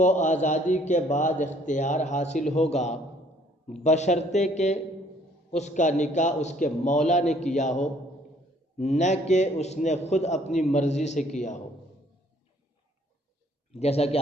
آزادی کے بعد اختیار حاصل ہوگا بشرطے کہ اس کا نکاح اس کے مولا نے کیا ہو، نہ کہ اس نے خود اپنی مرضی سے کیا ہو، جیسا کہ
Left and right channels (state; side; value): normal; both; correlation 0.61